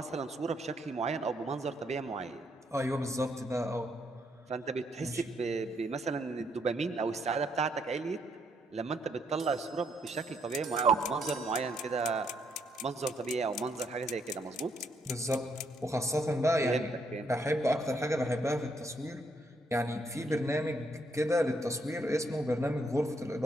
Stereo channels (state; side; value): normal; both; correlation 0.73